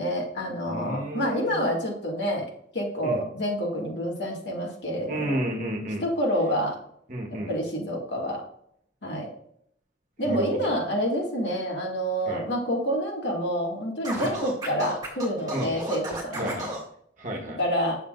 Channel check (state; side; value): normal; both; correlation 0.18